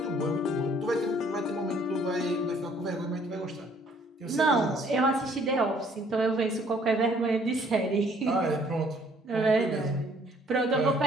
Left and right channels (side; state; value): both; normal; correlation 0.60